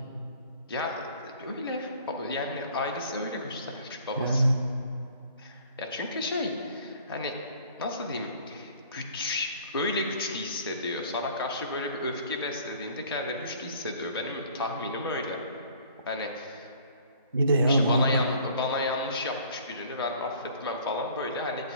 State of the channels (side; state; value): both; inverted; correlation -0.52